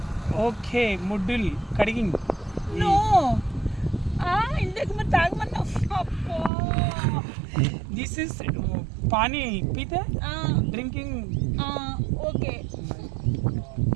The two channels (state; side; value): drops out; left; at 6.5 s